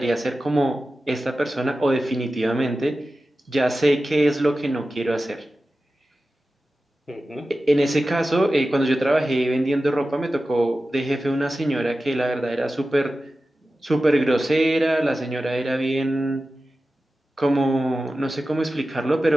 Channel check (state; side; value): normal; both; correlation 0.94